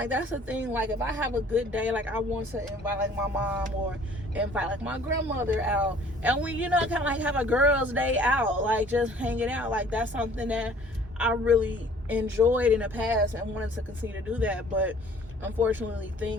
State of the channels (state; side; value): normal; both; correlation 0.54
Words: that's the thing. Like, if I have a good day, like, I want to invite like my mom or invite like my grandmother out, and we, you know, kind of like have a girls' day out, like just hanging out. Like, that's something that I really enjoyed in the past and wanted to continue to do that. But unfortunately,